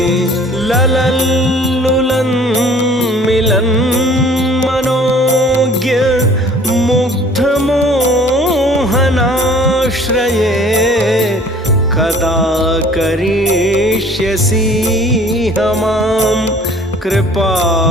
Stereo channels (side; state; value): both; normal; correlation 0.52